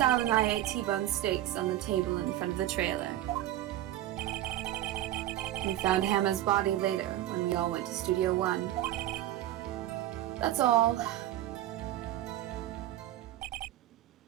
and I ate T-bone steaks on the table in front of the trailer. We found Hannah's body later when we all went to Studio 1. That's all.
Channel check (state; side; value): quieter; left; 13.7 dB